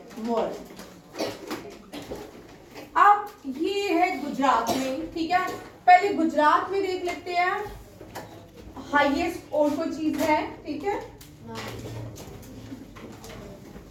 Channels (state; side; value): identical; both; correlation 1.00